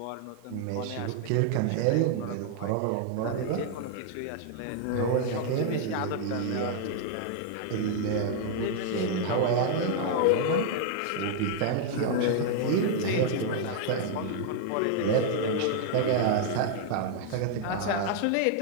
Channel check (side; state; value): both; different; correlation 0.00